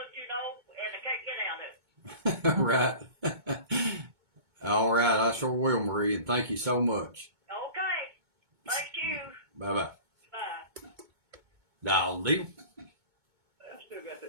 and I can't get out of it. Right. All right. I sure will, Marie, and thank you so much. Okay. Thank you. Bye-bye. Bye. Dial deal. I still got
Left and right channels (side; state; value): left; late; 2.2 ms